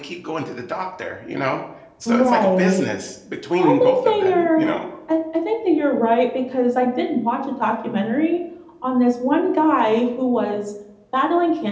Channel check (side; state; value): both; identical; correlation 1.00